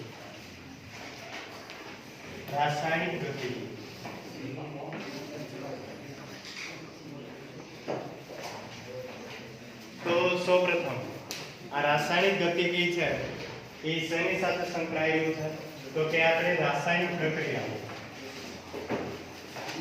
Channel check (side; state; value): both; identical; correlation 1.00